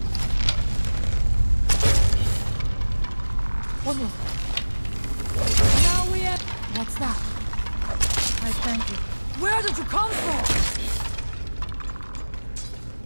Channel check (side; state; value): both; inverted; correlation -1.00